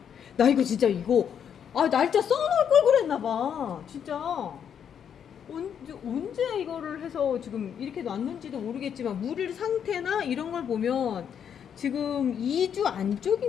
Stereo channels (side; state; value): right; quieter; 8.3 dB